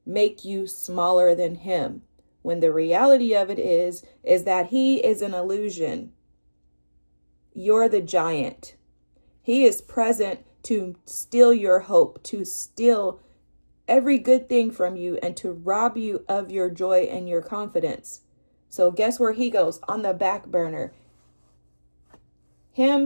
make you smaller than him, when the reality of it is that he is an illusion. You're the giant. He is present to steal your hope, to steal every good thing from you, and to rob you of your joy and your confidence. So guess where he goes? On the back burner.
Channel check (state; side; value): inverted; both; correlation -1.00